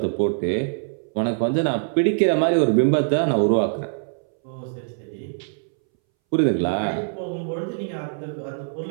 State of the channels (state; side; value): silent; left; 62 dB below the other